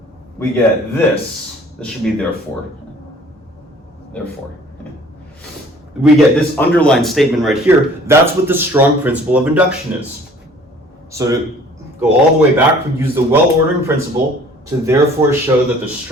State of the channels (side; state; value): both; normal; correlation 0.53